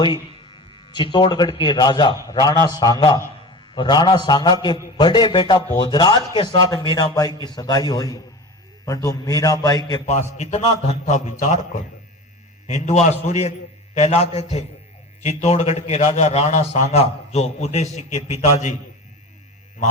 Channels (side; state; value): both; normal; correlation 0.32